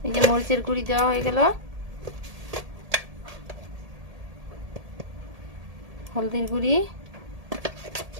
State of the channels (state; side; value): late; left; 1.8 ms